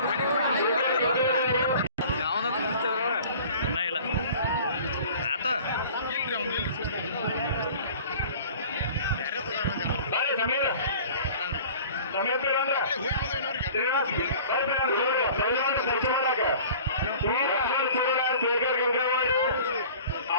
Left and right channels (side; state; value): both; inverted; correlation -0.45